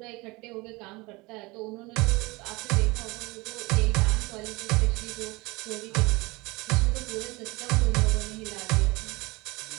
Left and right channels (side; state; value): left; quieter; 23.7 dB